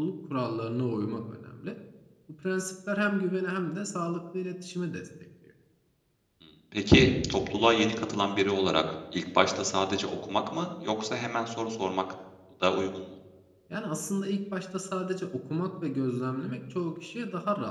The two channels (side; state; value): both; identical; correlation 1.00